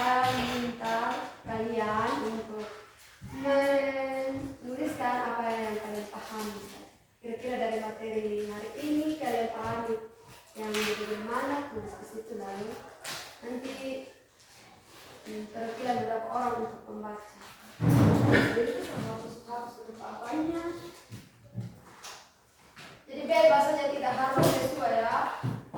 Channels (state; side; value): identical; both; correlation 1.00